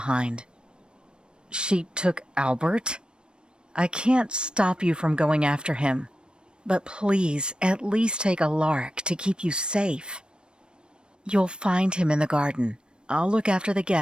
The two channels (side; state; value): left; late; 0.053 ms